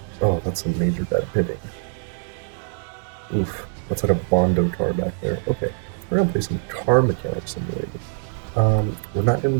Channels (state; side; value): silent; left; 57 dB below the other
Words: Oh, that's some major bad hitting. Oof, that's like a Bondo car back there. Okay, we're gonna play some Car Mechanic Simulator. We're not gonna